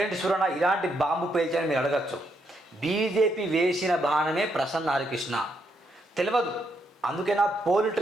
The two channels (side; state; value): both; normal; correlation 0.77